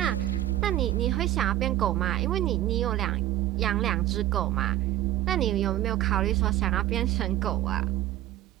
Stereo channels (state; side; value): quieter; left; 14.2 dB